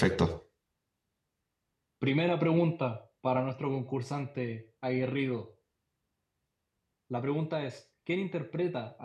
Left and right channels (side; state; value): both; identical; correlation 1.00